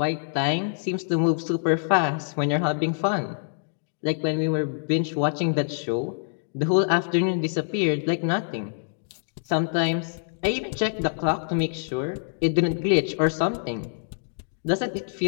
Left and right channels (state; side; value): silent; right; digital silence